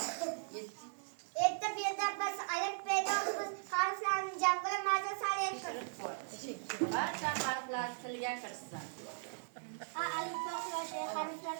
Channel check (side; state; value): left; silent; digital silence